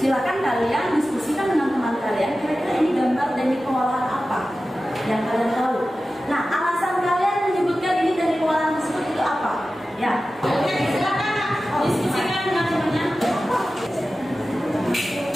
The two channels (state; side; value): normal; both; correlation 0.94